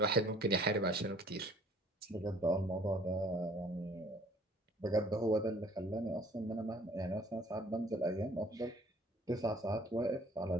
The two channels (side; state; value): both; normal; correlation 0.56